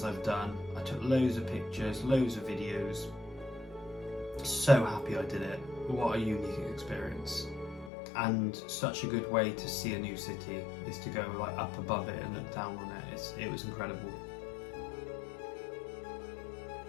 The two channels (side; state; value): right; drops out; at 7.9 s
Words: I've done. I took loads of pictures, loads of videos. So happy I did it. What a unique experience. And such a good way to see a new city is to go like up above it and look down on it. It was incredible.